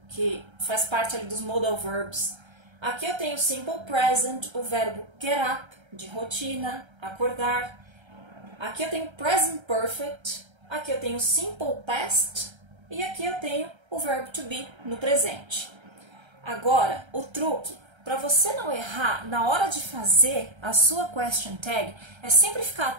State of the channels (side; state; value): left; late; 1.3 ms